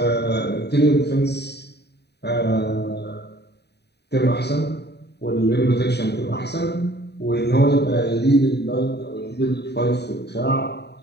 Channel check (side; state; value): right; late; 0.48 ms